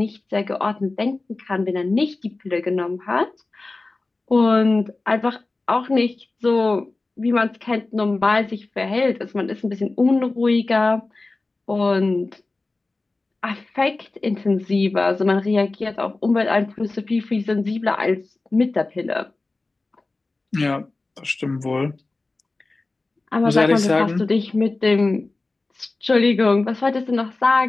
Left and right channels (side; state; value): right; quieter; 3.3 dB